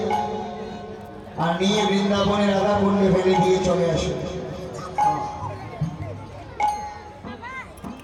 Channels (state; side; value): identical; both; correlation 1.00